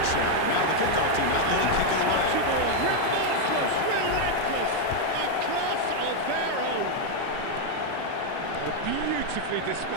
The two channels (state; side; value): different; both; correlation 0.01